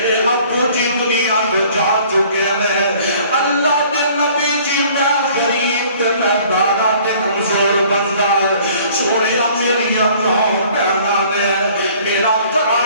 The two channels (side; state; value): both; inverted; correlation -0.54